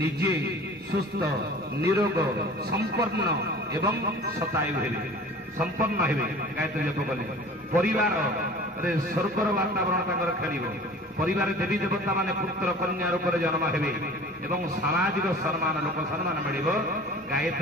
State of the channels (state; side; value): normal; both; correlation 0.43